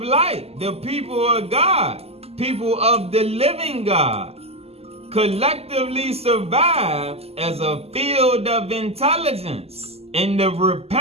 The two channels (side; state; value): left; late; 0.29 ms